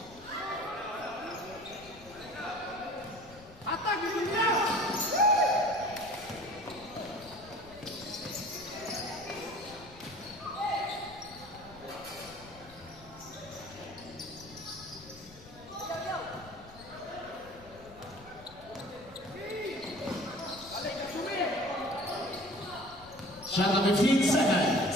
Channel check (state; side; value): noise; left; rumble, 21 dB below the sound